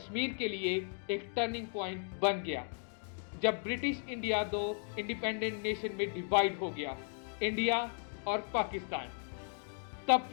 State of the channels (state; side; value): silent; right; 54 dB below the other